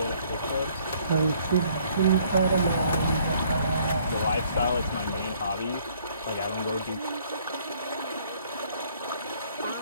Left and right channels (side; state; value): both; inverted; correlation -0.62